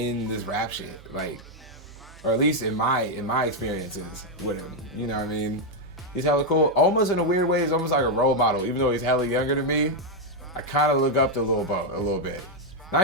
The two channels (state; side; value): normal; both; correlation 0.01